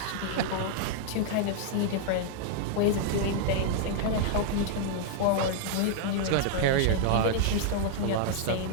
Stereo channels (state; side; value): different; both; correlation -0.01